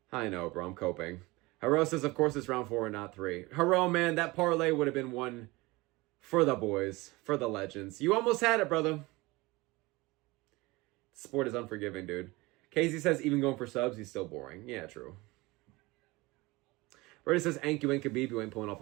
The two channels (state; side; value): quieter; left; 22.3 dB